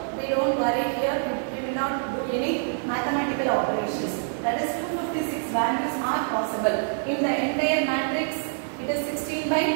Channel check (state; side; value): silent; left; digital silence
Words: we don't worry here. We will not do any mathematical operations. That is 256 values are possible. In the entire matrix, it is 16 by